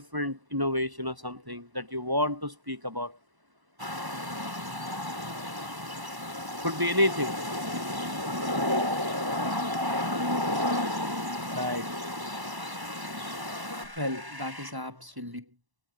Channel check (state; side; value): late; left; 1.0 ms